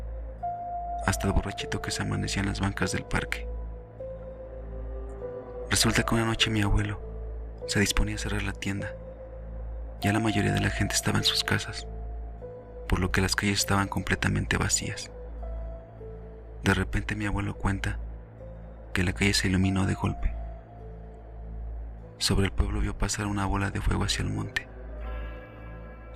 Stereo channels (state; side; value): identical; both; correlation 1.00